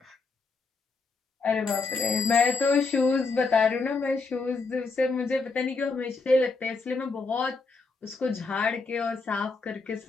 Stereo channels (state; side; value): quieter; right; 4.1 dB